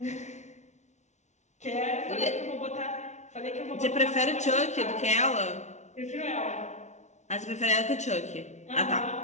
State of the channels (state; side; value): late; right; 0.33 ms